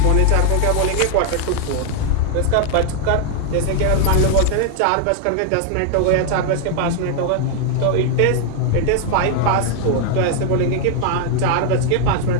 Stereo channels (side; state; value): both; different; correlation 0.00